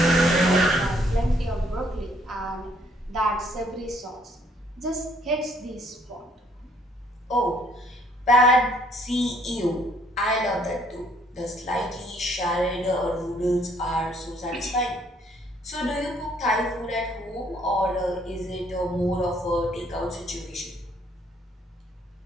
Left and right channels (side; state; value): both; normal; correlation 0.65